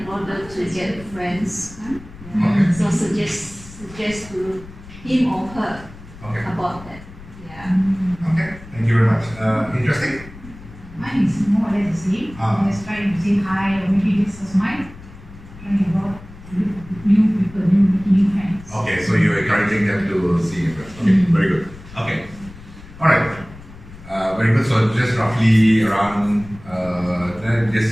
order to get friends. okay. So suggest to him or her Okay. about that. Yeah. Okay. Thank you very much. Interesting. Mine is more or less the same. Ah. Just trying to say hi, or maybe this is mine. Trying to go out to look for new people, new friends. Okay, so you're encouraging them to see your friends. Okay, very good. Okay. All right. Very good. So just roughly around, then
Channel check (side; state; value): left; noise; rumble, 18 dB below the sound